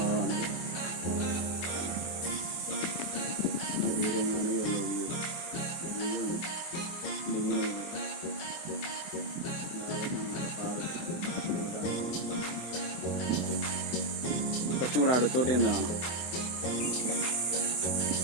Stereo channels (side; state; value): right; late; 24 ms